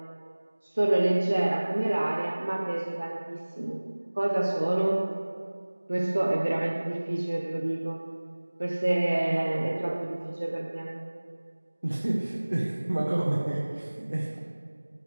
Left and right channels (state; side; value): inverted; both; correlation -1.00